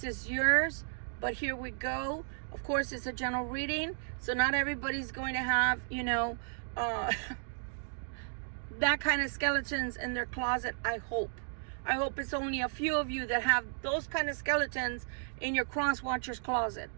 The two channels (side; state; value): left; silent; digital silence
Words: is yours, but here we go. Of course, it's a general reading, so not everybody's going to have, you know, that kind of skeletons in their closet. I hope it's only a few of you that have those kind of skeletons in your cross watcher's closet.